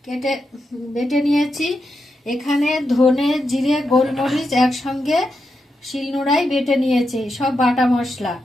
কেটে বেটে নিয়েছি। এখানে ধনে, জিরে, গোলমরিচ একসঙ্গে শিলনোড়ায় বেটে নিয়েছি, সব বাটা মশলা।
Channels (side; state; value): both; normal; correlation 0.86